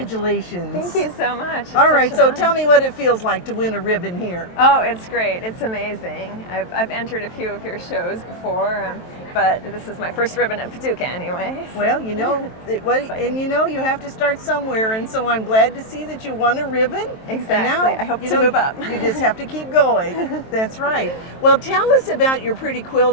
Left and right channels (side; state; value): right; late; 23 ms